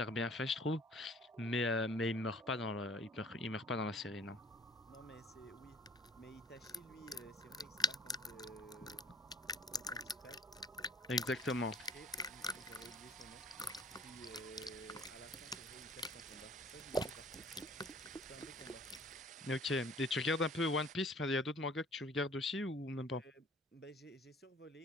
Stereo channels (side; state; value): both; normal; correlation 0.53